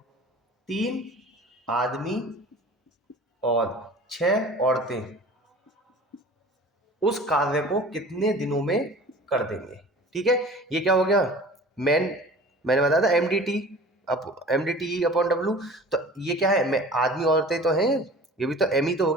3 आदमी और 6 औरतें उस कार्य को कितने दिनों में कर देंगे। ठीक है, ये क्या हो गया मैंने बताया था MDT अपॉन W। तो ये क्या है, मैं आदमी औरतें तो हैं, ये भी तो M ही तो हो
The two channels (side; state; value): both; normal; correlation 0.43